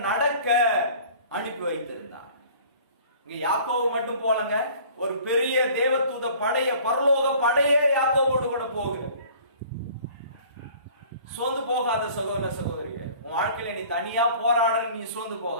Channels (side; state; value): both; inverted; correlation -0.49